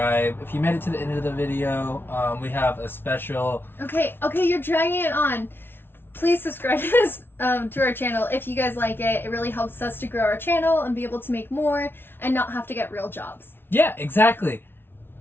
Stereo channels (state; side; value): late; right; 0.11 ms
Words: If you made it to the end of the video, we have a special... Okay, you're dragging it on. Please subscribe to this to our channel if you guys like it. It really helps us to grow our channel and be able to make more and not have to get real jobs. Yeah, exactly.